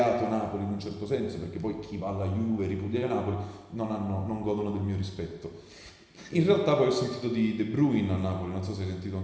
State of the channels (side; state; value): both; identical; correlation 1.00